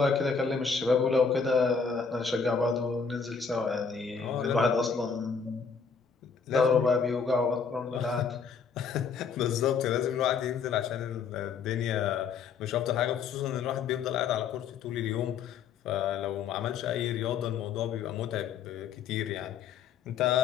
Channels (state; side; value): quieter; right; 5.8 dB